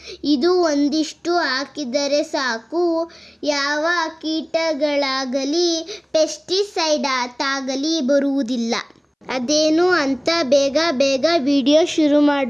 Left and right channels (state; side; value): identical; both; correlation 1.00